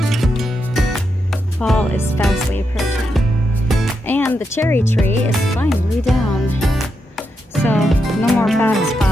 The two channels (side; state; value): both; normal; correlation 0.84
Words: Fall is fastly approaching. And the cherry tree is finally down. So, no more bad